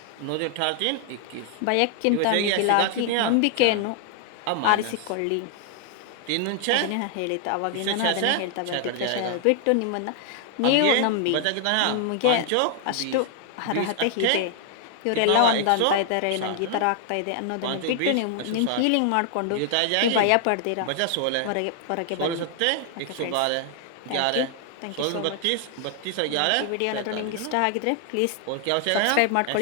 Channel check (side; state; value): both; different; correlation 0.00